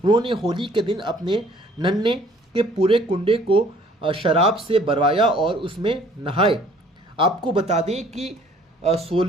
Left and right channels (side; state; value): both; normal; correlation 0.57